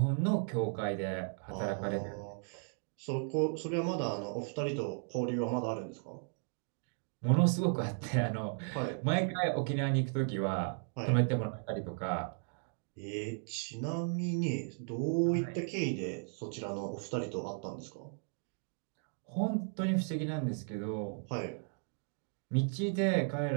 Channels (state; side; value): silent; left; 54 dB below the other